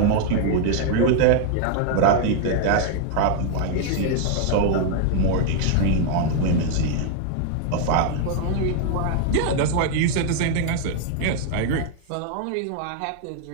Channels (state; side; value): different; both; correlation 0.00